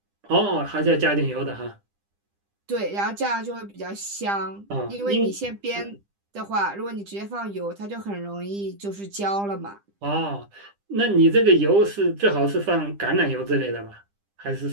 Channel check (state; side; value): late; left; 10 ms